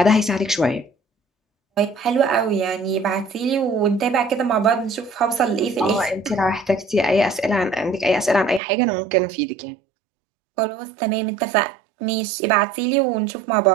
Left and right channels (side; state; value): left; drops out; at 8.6 s